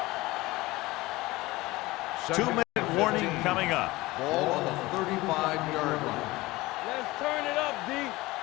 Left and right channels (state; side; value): quieter; right; 20.0 dB